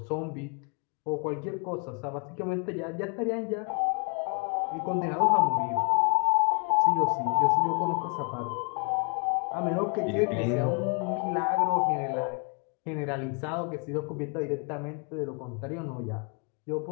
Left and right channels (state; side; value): quieter; right; 36.3 dB